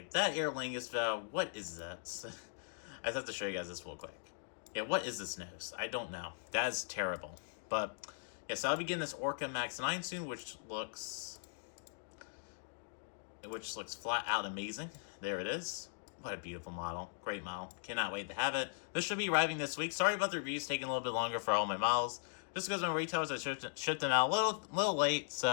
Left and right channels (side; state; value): right; silent; digital silence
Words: That Aer Lingus valve, what is that? I have to show you guys this real quick. Yeah, what is this nose? I don't know. That is terrible. But, yeah, so I'll be getting this Orca Max 9 soon, which looks flat out amazing. There it is. What a beautiful model. Great model. Cannot wait to have it. This should be arriving this week. Sorry about the reviews taking a little bit longer for all my models. Just because my retailers I shipped them out a little late,